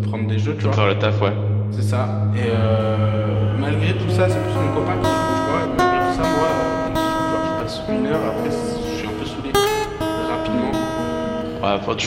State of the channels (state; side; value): identical; both; correlation 1.00